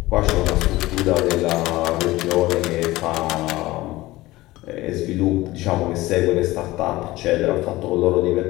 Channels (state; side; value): quieter; right; 18.4 dB